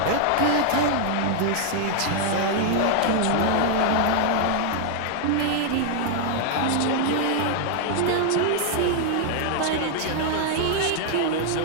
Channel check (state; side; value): different; both; correlation 0.00